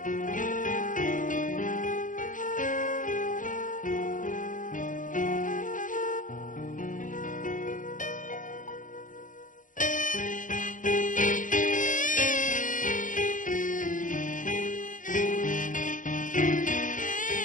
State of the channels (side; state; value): right; late; 0.38 ms